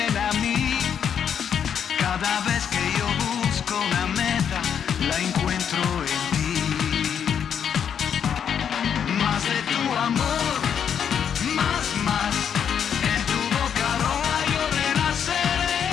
a mí. Cada vez que yo busco una meta, la encuentro en ti. Más de tu amor, más, en tu boca roja yo renaceré.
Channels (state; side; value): quieter; right; 8.1 dB